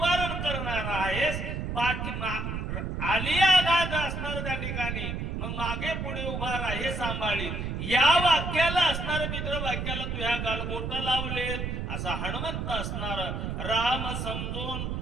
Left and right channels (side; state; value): right; noise; rumble, 3 dB below the sound